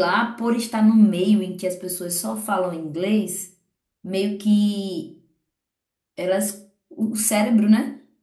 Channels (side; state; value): both; identical; correlation 1.00